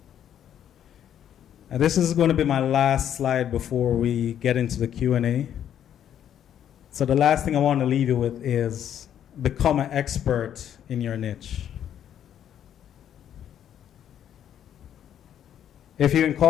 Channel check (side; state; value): right; quieter; 9.9 dB